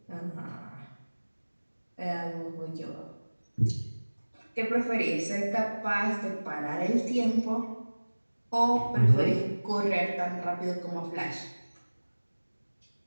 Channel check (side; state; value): both; inverted; correlation -1.00